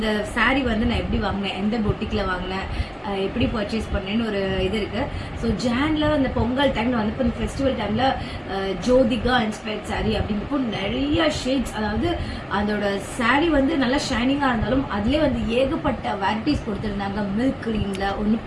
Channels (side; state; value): both; identical; correlation 1.00